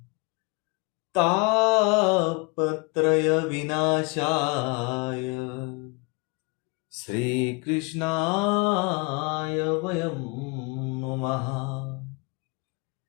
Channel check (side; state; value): right; quieter; 29.5 dB